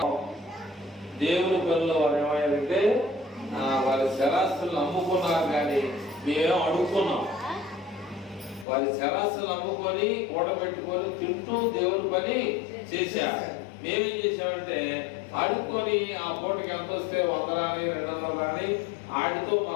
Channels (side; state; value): right; drops out; at 8.7 s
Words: దేవుని పనులు వారు ఏమయ్యారంటే వారి శరాస్తులను అమ్ముకున్నారు, కానీ మేమేం అడుగుకున్నాం. వారి శరాస్తులు అమ్ముకొని కూడబెట్టుకొని తింటూ దేవుని పని చేశారు. మేమేం చేసామంటే ఆడుకొని ఆ పూటకి ఎంత వస్తే 100 రాని 200 రాని ఆడితో మా